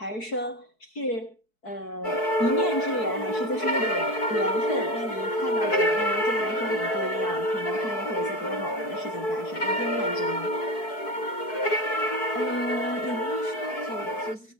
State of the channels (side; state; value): right; late; 4.6 ms